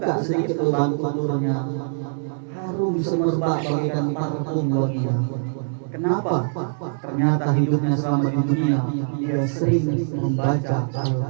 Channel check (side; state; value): left; silent; digital silence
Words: sedikit lubang tuburnya, harum semerbak bagaikan parfum wanita. Kenapa? Ternyata hidupnya selama di dunia dia sering membaca